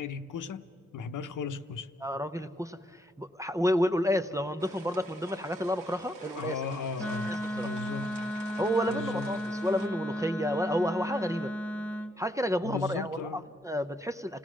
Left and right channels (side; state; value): both; normal; correlation 0.75